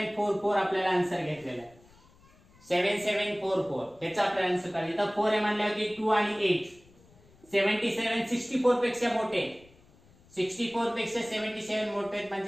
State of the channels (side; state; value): left; noise; rumble, 28 dB below the sound